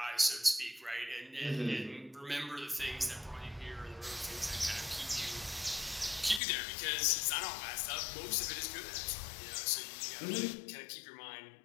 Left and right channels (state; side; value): drops out; right; at 6.4 s